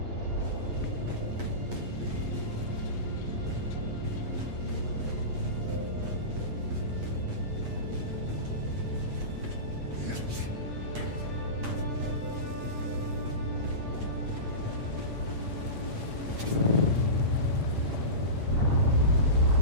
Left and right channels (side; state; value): left; late; 8.4 ms